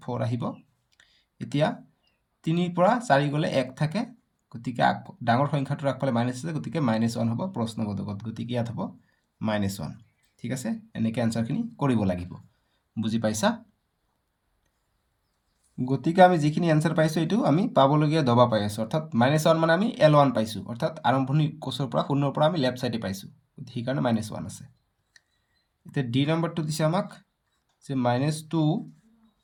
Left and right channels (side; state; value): both; identical; correlation 1.00